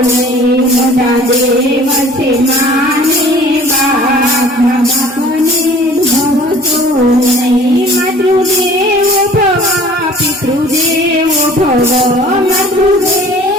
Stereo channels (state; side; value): normal; both; correlation 0.49